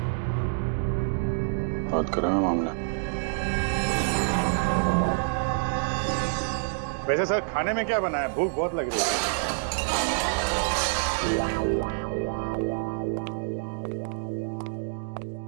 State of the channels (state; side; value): silent; left; digital silence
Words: बहुत गर्म है मामला। वैसे सर खाने में क्या बना है? भूख बहुत लग रही है।